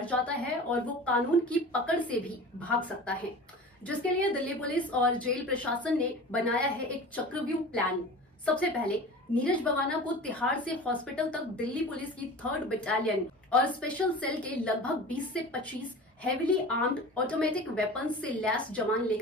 जाता है और वो कानून की पकड़ से भी भाग सकता है, जिसके लिए दिल्ली पुलिस और जेल प्रशासन ने बनाया है एक चक्रव्यूह प्लान। सबसे पहले नीरज बवाना को तिहाड़ से हॉस्पिटल तक दिल्ली पुलिस की 3rd बटालियन और स्पेशल सेल के लगभग 20 से 25 हेवीली आर्म्ड ऑटोमेटिक वेपन्स से लैस जवान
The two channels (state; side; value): normal; both; correlation 0.36